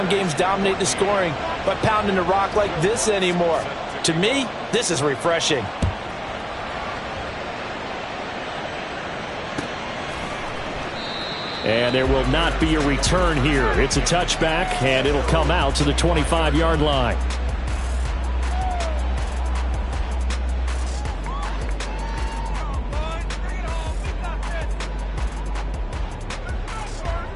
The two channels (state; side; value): identical; both; correlation 1.00